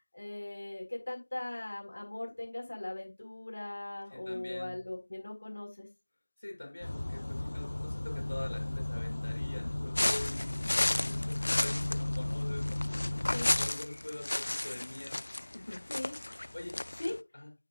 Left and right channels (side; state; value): both; inverted; correlation -1.00